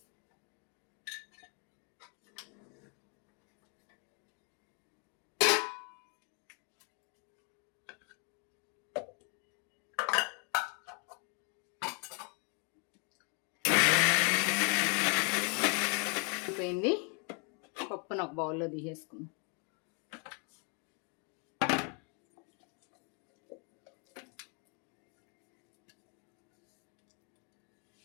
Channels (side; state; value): right; quieter; 34.4 dB